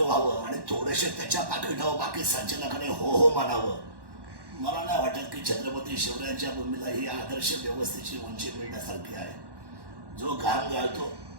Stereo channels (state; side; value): late; left; 1.1 ms